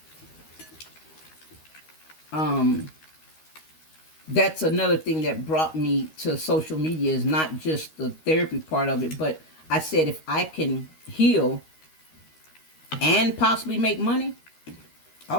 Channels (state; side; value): late; right; 13 ms